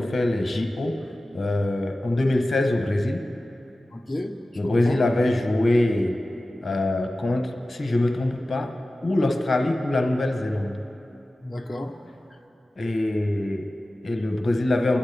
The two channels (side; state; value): both; normal; correlation 0.96